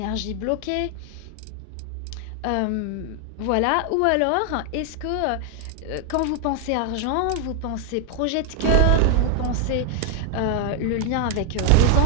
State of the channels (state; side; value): different; both; correlation 0.00